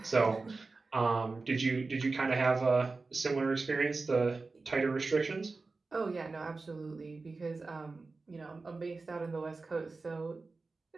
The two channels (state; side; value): quieter; left; 3.8 dB